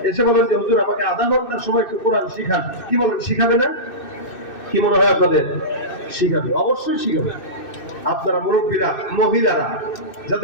এসে বলেন যে হুজুর আমাকে আধা ঘন্টা সময় একটু কোরআন শিখান, কি বলেন, শিখাবে না? কি মনে হয় আপনাদের? শিখাবে, অবশ্যই শিখাবে। আপনারা মুরব্বীরা, মহিলারা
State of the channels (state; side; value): late; right; 2.6 ms